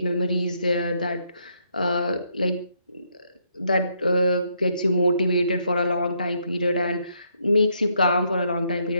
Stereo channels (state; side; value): inverted; both; correlation -0.74